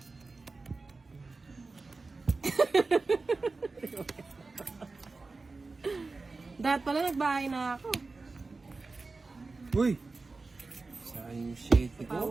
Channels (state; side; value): quieter; left; 3.8 dB